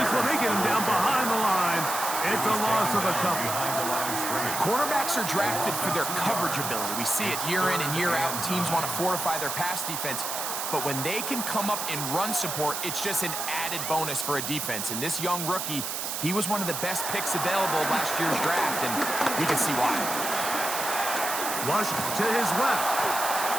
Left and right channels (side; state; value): right; noise; hiss, 3 dB below the sound